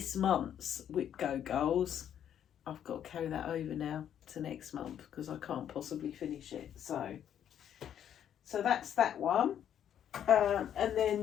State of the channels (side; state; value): right; quieter; 9.7 dB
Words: month's WIPGO goals. I've got to carry that over now to next month because I can't possibly finish it. So that's that one. And then